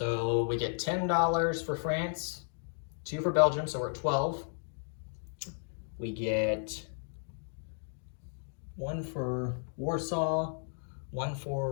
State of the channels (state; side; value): silent; right; digital silence